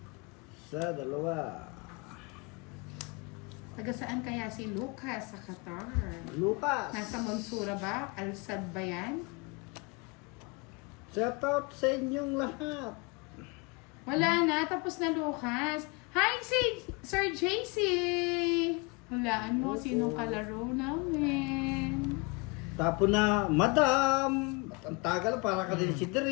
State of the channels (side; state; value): right; quieter; 29.1 dB